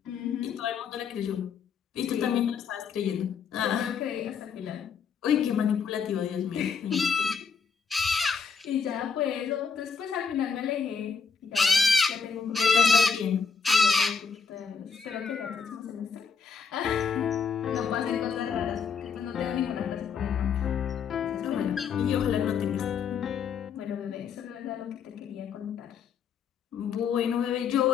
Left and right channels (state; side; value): quieter; right; 6.1 dB